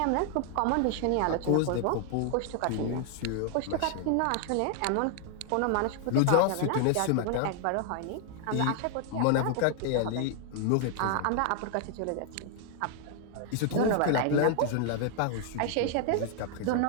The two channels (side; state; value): both; different; correlation 0.00